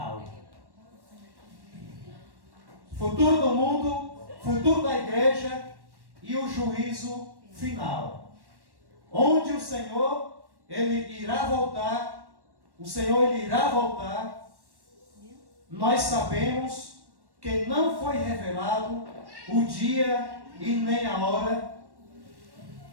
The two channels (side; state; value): left; late; 1.1 ms